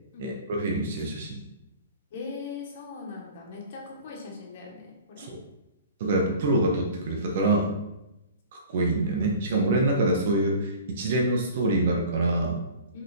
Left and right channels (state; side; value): inverted; both; correlation -0.42